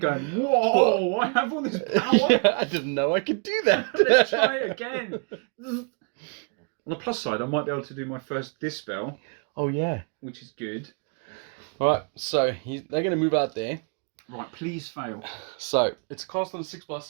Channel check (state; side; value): quieter; left; 39.6 dB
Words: "Whoa! I have all this power." Yeah, I didn't know I could do that. Let's try it again. On the plus side, I might be able to do my first dispel. Oh yeah, which is good. All right, so they're going to move out there. Right, please fail. So it's cast on a